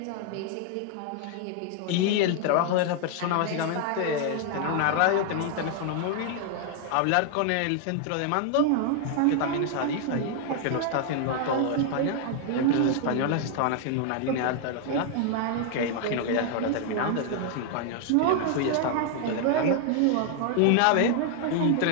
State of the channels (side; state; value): both; different; correlation 0.00